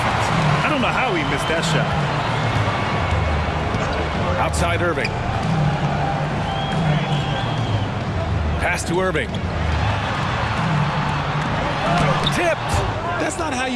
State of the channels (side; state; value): both; identical; correlation 1.00